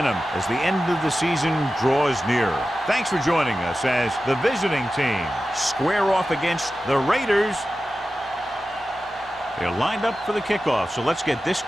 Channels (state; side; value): normal; both; correlation 0.93